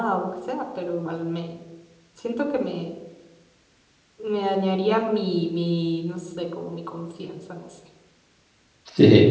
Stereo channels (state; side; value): identical; both; correlation 1.00